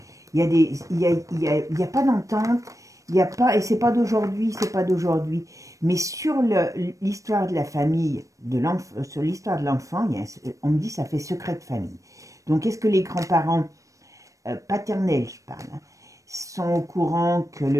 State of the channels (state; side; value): late; left; 0.16 ms